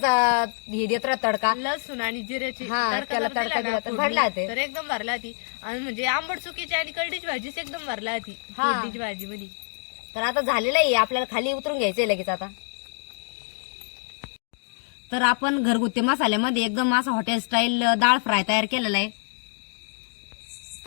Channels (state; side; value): silent; right; 61 dB below the other